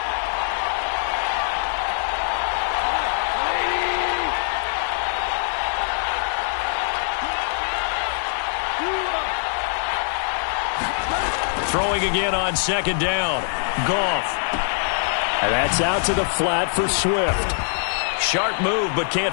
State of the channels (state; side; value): silent; right; digital silence